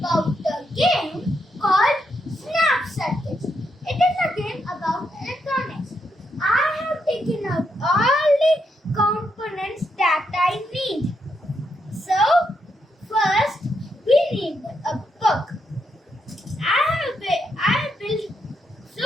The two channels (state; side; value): normal; both; correlation 0.80